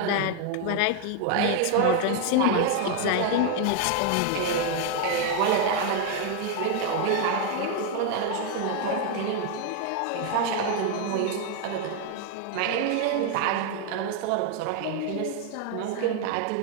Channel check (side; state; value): both; different; correlation 0.01